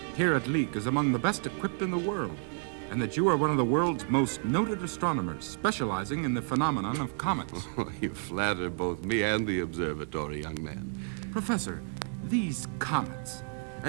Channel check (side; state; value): left; silent; 57 dB below the other